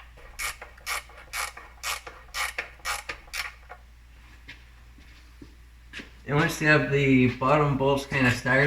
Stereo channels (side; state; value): both; identical; correlation 1.00